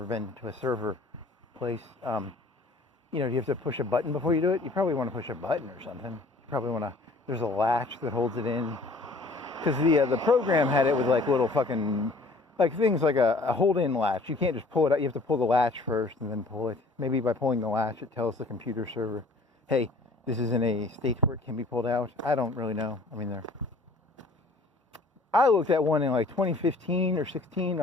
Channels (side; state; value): right; quieter; 3.2 dB